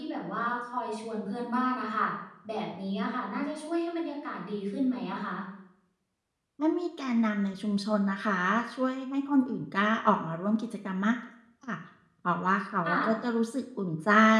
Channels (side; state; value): both; identical; correlation 1.00